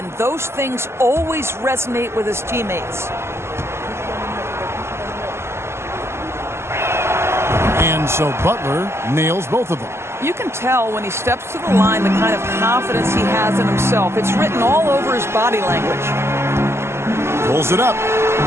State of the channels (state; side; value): late; left; 0.12 ms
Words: Those things always resonate with his teammates. And so Butler nails both of them. You can tell when he steps to the line the kind of confidence he has in himself. It's written all over his body language. Pulls it up.